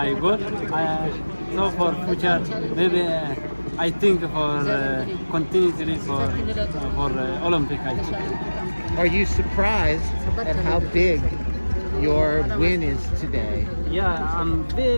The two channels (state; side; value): inverted; both; correlation -1.00